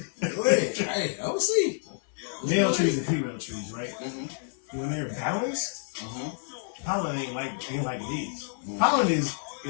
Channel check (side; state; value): right; silent; 59 dB below the other